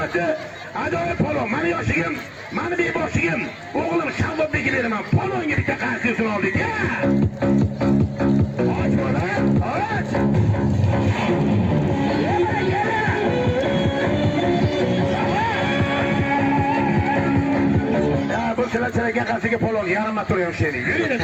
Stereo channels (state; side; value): identical; both; correlation 1.00